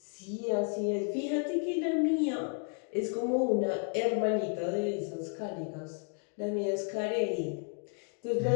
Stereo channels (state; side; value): quieter; right; 39.3 dB